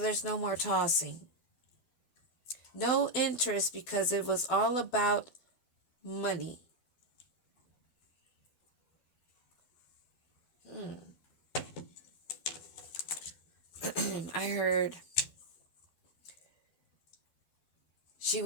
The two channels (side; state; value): right; late; 12 ms